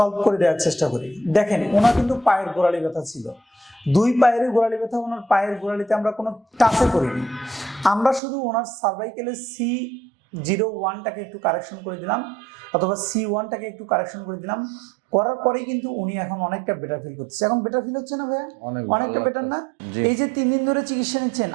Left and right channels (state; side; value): drops out; left; at 8.2 s